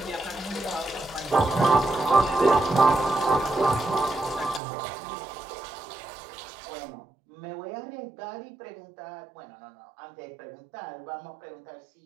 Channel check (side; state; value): left; drops out; at 4.6 s